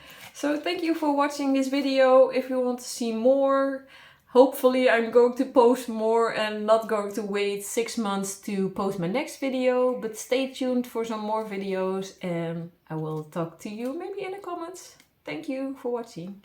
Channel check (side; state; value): both; identical; correlation 1.00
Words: So thank you for watching this video. If you want to see more, hopefully I'm going to post more and not going to wait 6 months to post my next video. But stay tuned for some more videos, and I will talk to you maybe in the comments. Thank you for watching.